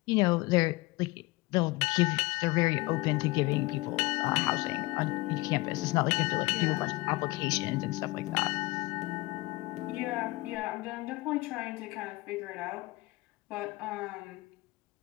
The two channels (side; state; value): right; quieter; 21.5 dB